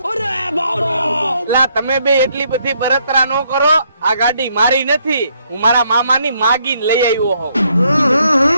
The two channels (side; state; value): both; inverted; correlation -0.72